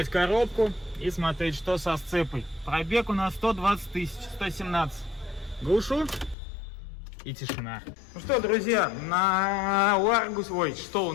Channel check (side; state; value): right; drops out; at 6.4 s